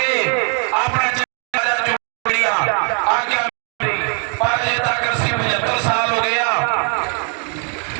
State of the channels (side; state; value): left; quieter; 38.7 dB